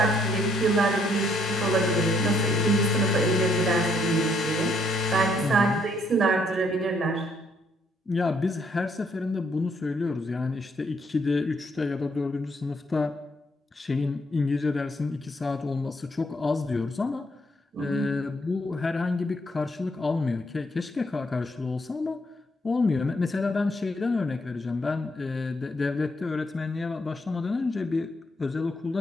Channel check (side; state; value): both; normal; correlation 0.71